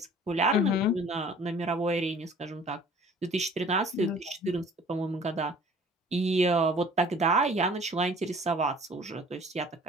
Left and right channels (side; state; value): both; normal; correlation 0.50